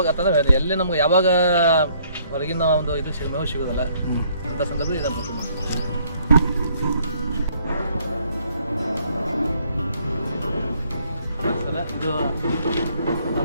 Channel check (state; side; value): inverted; both; correlation -0.64